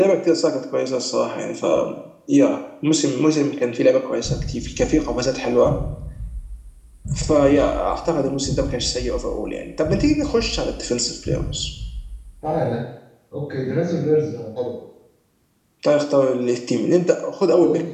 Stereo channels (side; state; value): both; identical; correlation 1.00